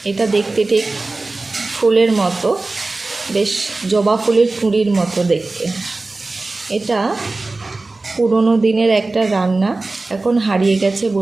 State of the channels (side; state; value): left; quieter; 3.3 dB